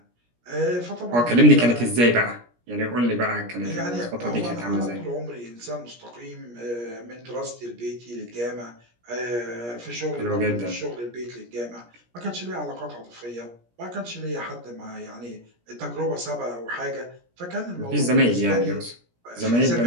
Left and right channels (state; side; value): late; left; 17 ms